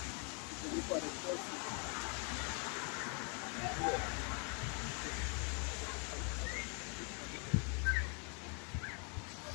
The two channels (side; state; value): right; quieter; 37.9 dB